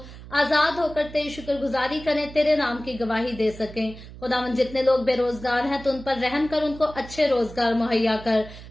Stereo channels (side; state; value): right; noise; hum, 16 dB below the sound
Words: आजाद होकर तेरी शुक्रगुजारी करें, तेरे नाम की गवाही दे सकें। खुदावन जितने लोग बेरोजगार हैं तो उन पर रहम कर, उनको अच्छे रोजगार मुहैया कर।